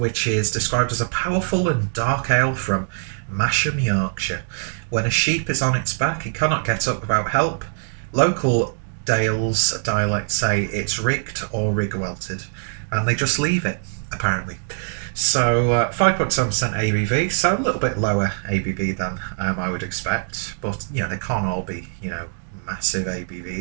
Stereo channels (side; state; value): left; silent; digital silence